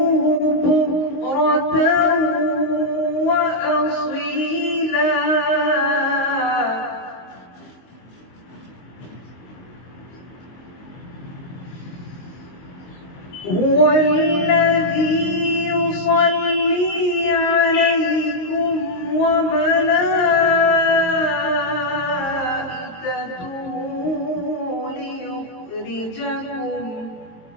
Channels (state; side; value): late; right; 23 ms